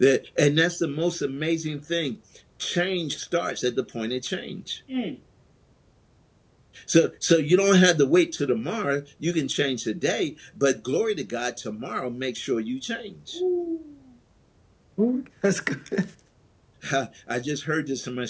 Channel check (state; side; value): identical; both; correlation 1.00